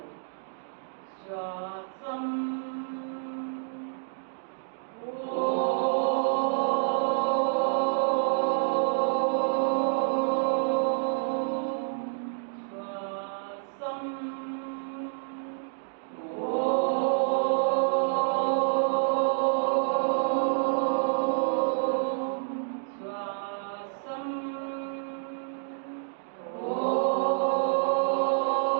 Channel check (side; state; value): left; silent; digital silence